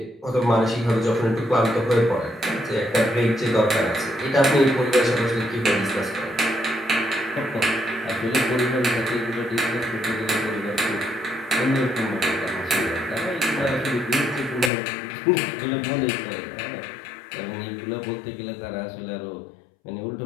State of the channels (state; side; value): drops out; right; at 14.7 s